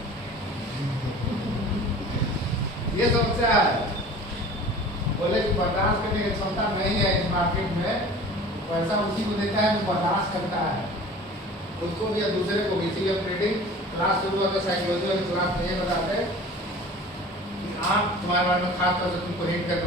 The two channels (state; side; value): normal; both; correlation 0.42